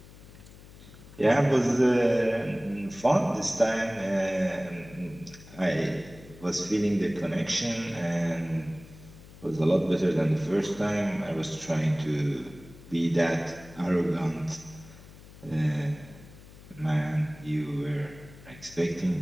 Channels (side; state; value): left; noise; hum, 19 dB below the sound